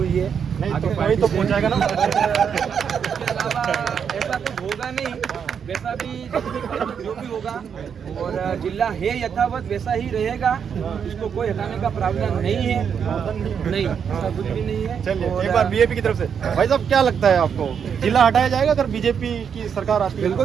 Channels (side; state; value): left; quieter; 7.3 dB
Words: है, नहीं तो कोई तो पहुँचाएगा ना। इसके अलावा ऐसा कुछ होगा नहीं, वैसा भी जो भी होगा, और जिला है यथावत वैसा ही रहेगा, इसको कोई हटाने का प्रावधान नहीं है, नहीं ऐसा कुछ भी नहीं है। चलिए एक बार बीजेपी की तरफ से भाई साहब क्या लगता है आपको, जिला हटाया जाएगा अगर बीजेपी की सरकार आती है?